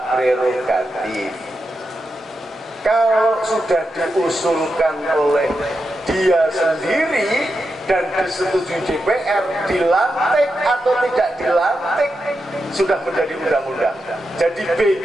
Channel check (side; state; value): both; normal; correlation 0.87